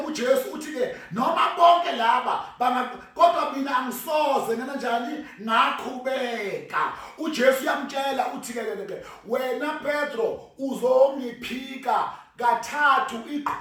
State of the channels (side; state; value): both; identical; correlation 1.00